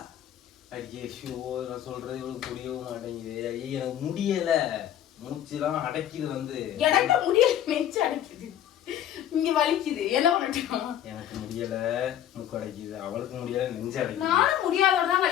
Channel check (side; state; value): right; quieter; 11.0 dB